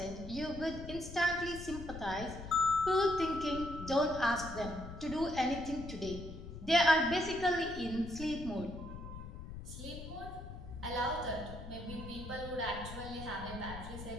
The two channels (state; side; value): noise; left; rumble, 10 dB below the sound